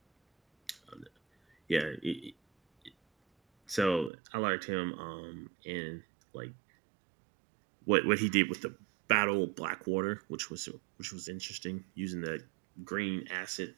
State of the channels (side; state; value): left; drops out; at 4.1 s